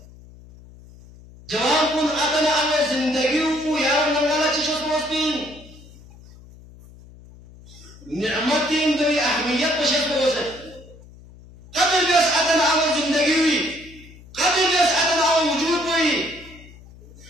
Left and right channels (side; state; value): left; noise; hum, 21 dB below the sound